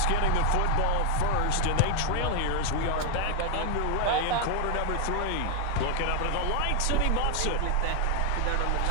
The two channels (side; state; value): both; different; correlation 0.01